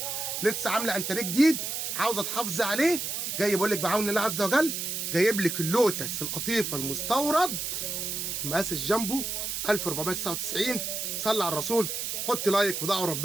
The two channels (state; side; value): noise; right; hiss, 3 dB below the sound